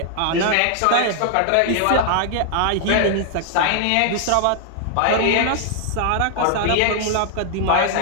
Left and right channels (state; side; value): different; both; correlation 0.00